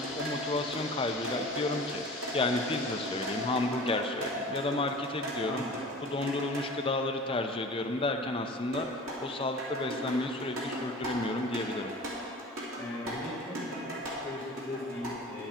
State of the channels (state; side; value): normal; both; correlation 0.40